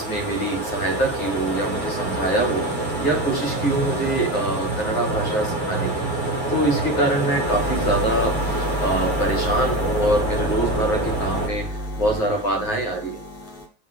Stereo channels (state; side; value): late; right; 9.4 ms